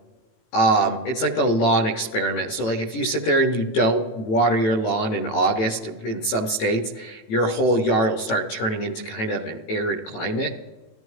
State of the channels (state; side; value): late; right; 18 ms